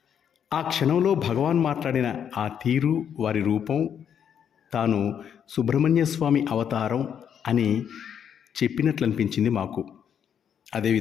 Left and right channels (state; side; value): quieter; right; 8.4 dB